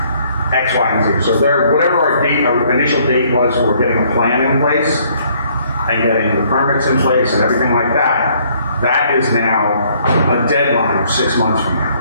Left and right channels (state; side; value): inverted; both; correlation -0.64